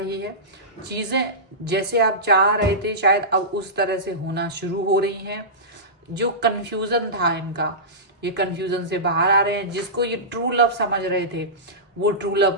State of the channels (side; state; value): both; normal; correlation -0.18